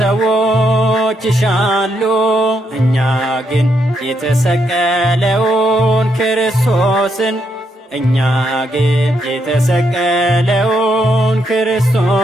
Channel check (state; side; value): normal; both; correlation 0.78